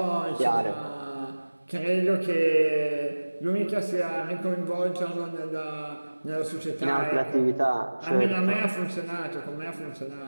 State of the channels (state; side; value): inverted; both; correlation -1.00